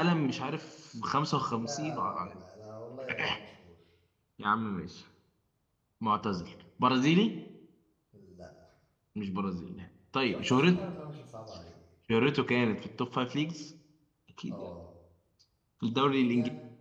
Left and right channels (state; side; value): identical; both; correlation 1.00